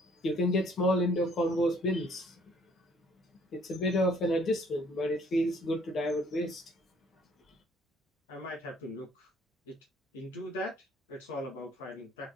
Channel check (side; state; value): both; normal; correlation 0.61